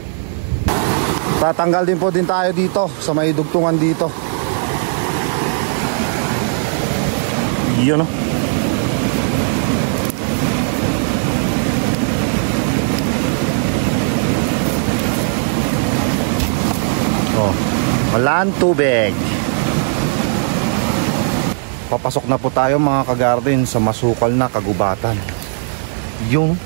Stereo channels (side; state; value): left; silent; 68 dB below the other